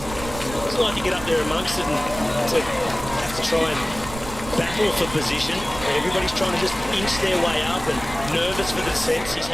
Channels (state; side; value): noise; right; rumble, 12 dB below the sound